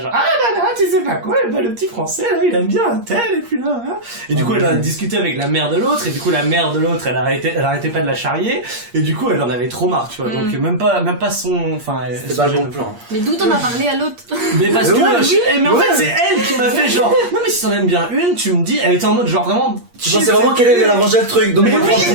ah là là, tu sais pas quoi, le petit français, là, il aime bien un tel, et puis là, hein. Et du coup, elle a discuté avec la mère de l'autre, et du coup, la mère de l'autre, elle arrêtait pas de la charrier, et du coup, elle en avait trop marre, tu vois, donc même pas son, enfin, c'était pas le bon plan. Mais d'où t'en as parlé à l'autre? Mais parce que, mais en fait, c'est elle qui m'a fait genre, non mais si t'en aimes bien une, tu me dis, elle était en mode genre vraiment, tu pensais vraiment qu'elle allait ranger le truc, donc moi je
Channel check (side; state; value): left; late; 8.5 ms